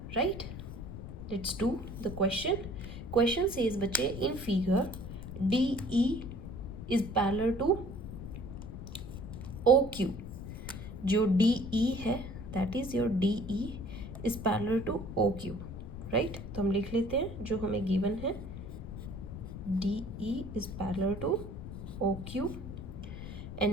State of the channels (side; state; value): left; noise; rumble, 9 dB below the sound